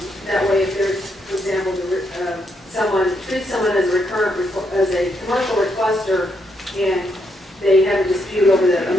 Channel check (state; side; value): normal; both; correlation 0.77